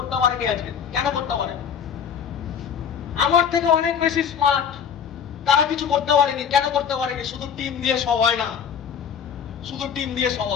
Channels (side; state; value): right; quieter; 7.6 dB